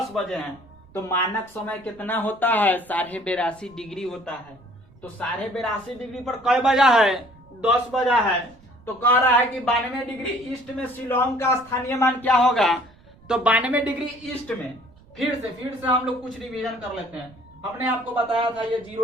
बजे हैं, तो मानक समय कितना होता है? 82.5 डिग्री होता है। तो 82.5 डिग्री पर कई बजा है? 10 बजा है। तो कह रहा है कि 92 डिग्री ईस्ट में शिलोंग का स्थानीय मान क्या होगा? तो 92 डिग्री ईस्ट में फिर से हम लोग कुछ रिवीजन कर लेते हैं। हमने आपको बताया था ये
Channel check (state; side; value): noise; right; rumble, 26 dB below the sound